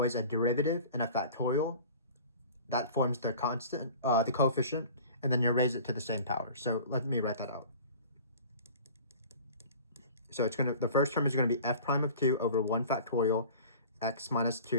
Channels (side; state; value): both; inverted; correlation -0.42